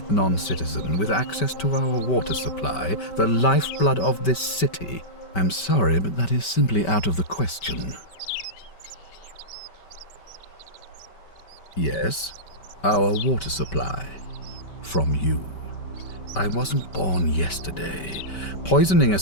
non-citizen with access to our water supply, the lifeblood of this city? I'm sorry, but that is simply out of the question. Yes, our water supply. From you. I wasn't born yesterday. Poisoning a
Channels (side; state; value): right; late; 5.2 ms